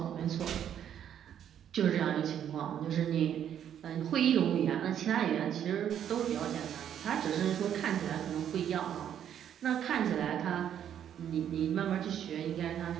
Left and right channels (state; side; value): quieter; left; 9.6 dB